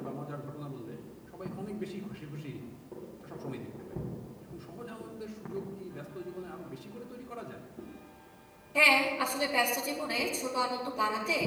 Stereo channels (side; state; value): both; identical; correlation 1.00